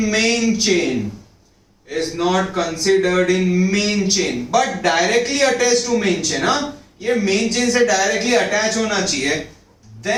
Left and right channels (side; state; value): both; identical; correlation 1.00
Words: main chain, is not considered in main chain but directly attached to main chain, ये main chain से directly attach होना चाहिए,